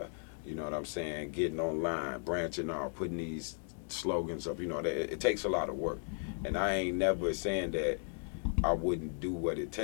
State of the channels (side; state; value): right; silent; 54 dB below the other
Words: You know what I'm saying? Getting online, branching out, putting these slogans up. You know, that it takes a lot of work, and I ain't never saying that I wouldn't do what it